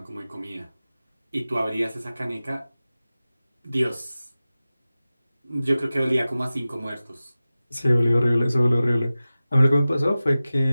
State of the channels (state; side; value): inverted; both; correlation -0.96